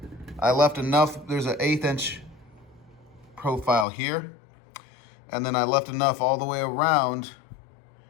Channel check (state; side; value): drops out; right; at 3.9 s